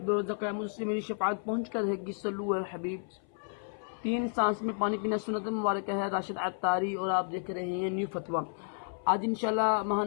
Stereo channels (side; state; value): right; silent; 56 dB below the other